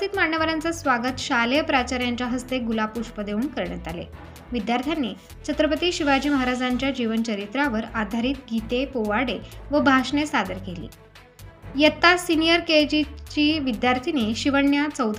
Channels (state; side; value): identical; both; correlation 1.00